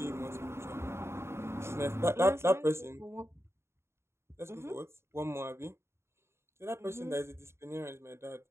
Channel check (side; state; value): left; late; 0.13 ms